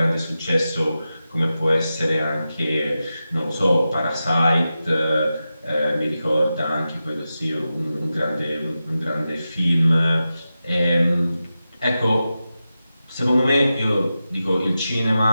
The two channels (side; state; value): both; inverted; correlation -0.92